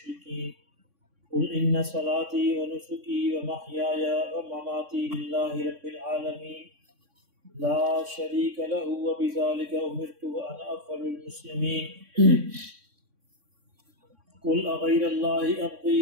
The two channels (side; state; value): left; late; 3.6 ms